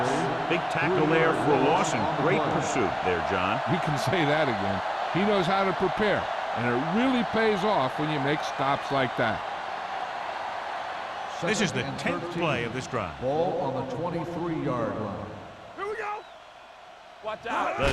Big tackle there for a loss and great pursuit there, John. You can say that again. He knows how to prepare, and it really pays off when you make stops like that. This is the 10th play of this drive. Ball on the 23-yard line. Here we go. Watch out. The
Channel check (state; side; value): identical; both; correlation 1.00